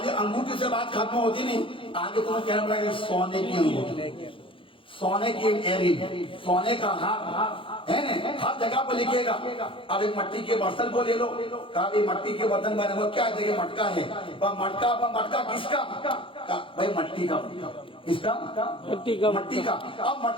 انگوٹھی سے بات ختم ہوتی نہیں, آگے تمہیں کہنا پڑے گا سونے کی انگوٹھی, سونے کی ایک ایئرنگ, سونے کا ہار ہے نا, ہر جگہ پہ لکھے گا. اب ایک مٹی کے برتن کو لے لو, کہا بھی مٹی کے برتن بنے ہوا کیا جگہ مٹکا ہے, مٹکا کس کا؟ بھائی مٹی کا. کس کا؟ مٹی کا. اب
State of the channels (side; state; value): right; late; 0.25 ms